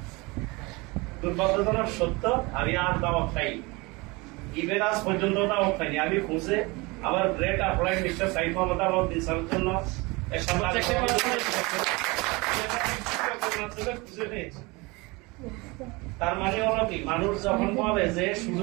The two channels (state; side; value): quieter; left; 25.2 dB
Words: দুর্ভাগ্যজনক সত্য, আমি আর দাওয়াত খাই, ইভেন আজ পর্যন্ত দাওয়াত খাইনি। আমি খুঁজে আমার great apply mister Saif Mohammad Alauddin স্যারের জন্য খুঁজে পেয়েছি। তার মানে হলো কি, মানুষ যখন বলে যে